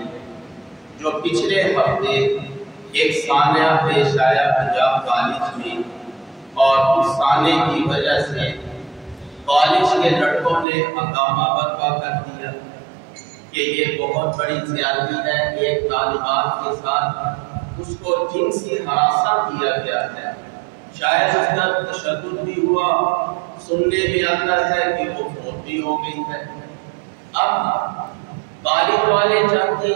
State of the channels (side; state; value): left; drops out; at 10.7 s